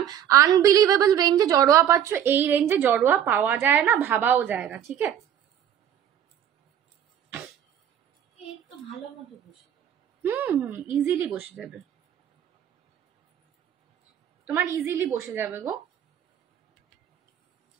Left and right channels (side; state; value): left; quieter; 9.9 dB